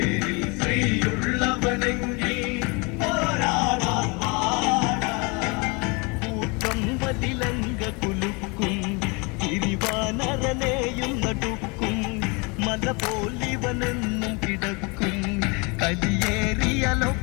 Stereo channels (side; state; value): right; quieter; 29.8 dB